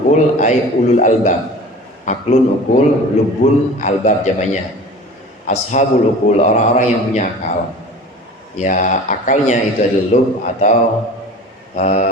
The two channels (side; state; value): both; normal; correlation 0.39